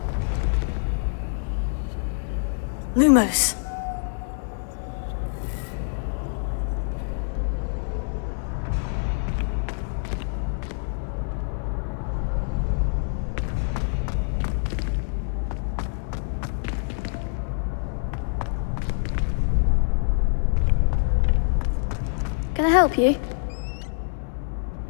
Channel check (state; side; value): silent; right; digital silence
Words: Lumos. Can I help you?